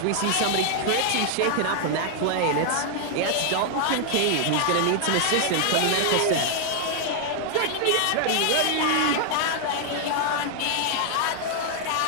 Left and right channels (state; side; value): different; both; correlation 0.00